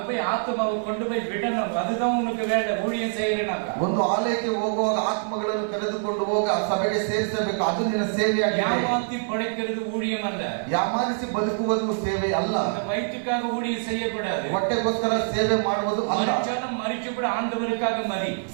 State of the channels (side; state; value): left; silent; 61 dB below the other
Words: போய் ஆத்மாவை கொண்டு போய் விடணும், அதுதான் உனக்கு வேலை. ஊழியம் செய்யறனாக்க ಒಂದು ಆಲಯಕ್ಕೆ ಹೋಗುವಾಗ ಆತ್ಮಗಳನ್ನು ಕರೆದುಕೊಂಡು ಹೋಗ ಆ ಸಭೆಗೆ ಸೇರಿಸಬೇಕು, ಅದು ನಿನ್ನ ಸೇವೆಯಾಗಿದೆ. ஏமாத்தி படைக்கிறது ஊழியம் அல்ல, ಯಾಮಾನಿಸಿ ಬದುಕುವುದು ಸೇವೆ ಅಲ್ಲ. அந்த வயிற்றுக்காக ஊழியம் செய்யக்கூடாது, ಹೊಟ್ಟೆಗೋಸ್ಕರ ಸೇವೆ ಮಾಡುವುದು ಅಲ್ಲ. மறிச்சாலும் மறிச்சு கூட ஆண்டவருக்காக மறி,